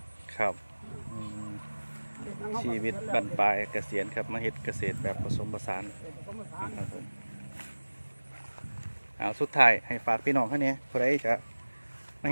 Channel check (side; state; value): both; inverted; correlation -1.00